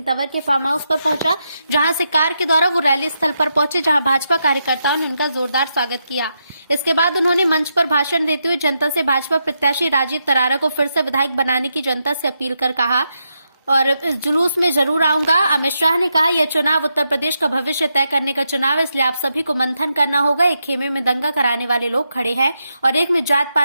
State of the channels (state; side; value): inverted; both; correlation -0.84